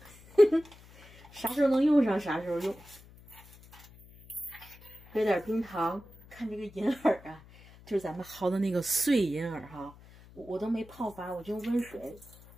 啥时候能用上啥时候用。搁点冰糖。看这个银耳啊，就是咱们薅的那个碎银耳哈，我都没泡发，我就用温水，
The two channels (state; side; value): noise; left; hum, 22 dB below the sound